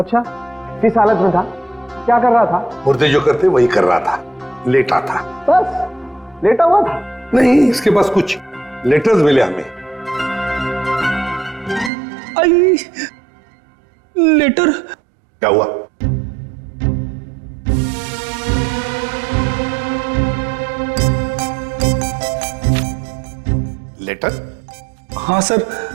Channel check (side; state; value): left; drops out; at 11.9 s